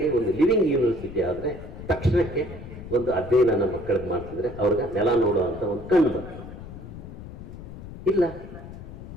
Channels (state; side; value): noise; left; rumble, 13 dB below the sound